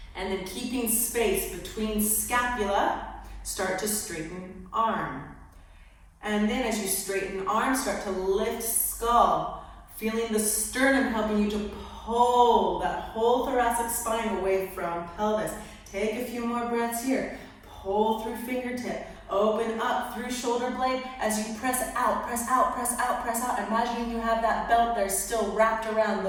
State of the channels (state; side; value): identical; both; correlation 1.00